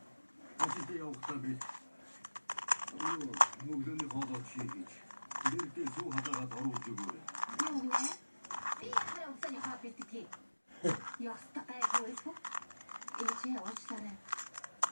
Ажил явахтаа би. Өглөөний хоолоо хийж. Дээрдээ суу хатагаад оруулж өгөөрэй. Юу нэ? Би яхаа өглөөний хоол бих тээ. Ястаа гайгүй. Эцээ уучлаарай.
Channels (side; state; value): both; inverted; correlation -1.00